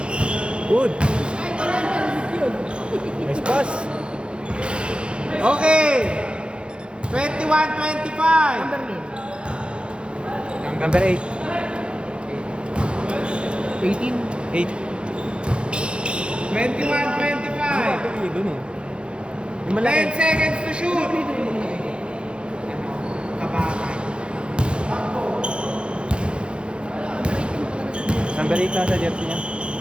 Good. Nice pass. Okay. 21-25. Number name. Number 8. 18. 8. 21-25. Doon eh. Yung 10 malaki. seconds to shoot. Kabatay. Number 8 na sa jersey niya.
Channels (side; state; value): left; late; 0.056 ms